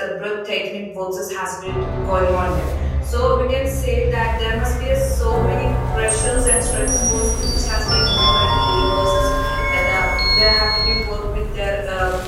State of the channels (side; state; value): both; identical; correlation 1.00